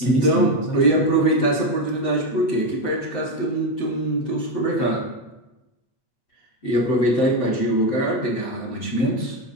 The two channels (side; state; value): right; late; 7.8 ms